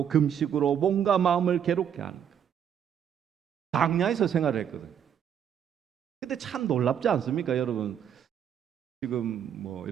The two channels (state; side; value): quieter; left; 8.8 dB